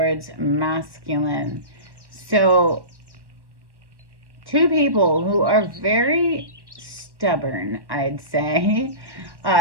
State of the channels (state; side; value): late; left; 1.1 ms